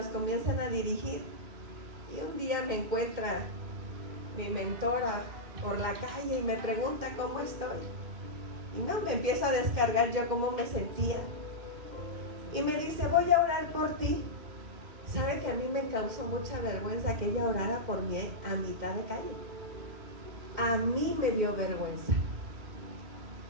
comienzan a dirigir. Y un día me encuentra mi mentora por la calle y me pregunta cómo estoy. Y no, me empiezo a descargar yo cómo me sentía. Y me dice, voy a orar por ti. ¿Sabe que a mí me causó mucha vergüenza que ella orara por mí a mitad de calle? A mí me dio vergüenza.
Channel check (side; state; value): left; late; 2.1 ms